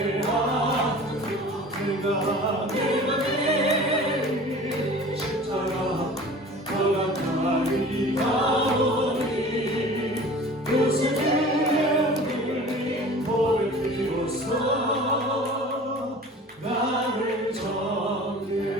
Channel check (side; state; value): both; normal; correlation 0.42